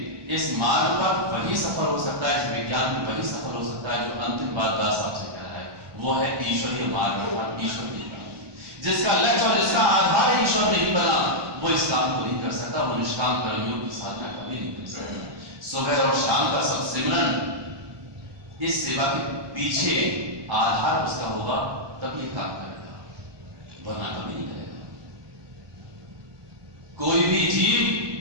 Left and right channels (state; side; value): late; left; 1.2 ms